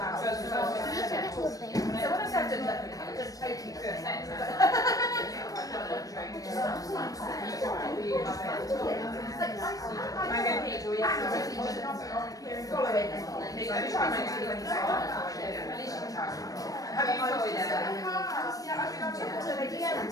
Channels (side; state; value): right; late; 0.17 ms